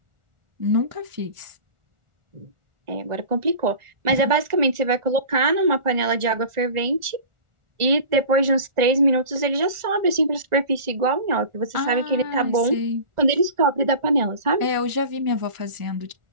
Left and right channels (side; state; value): left; late; 1.4 ms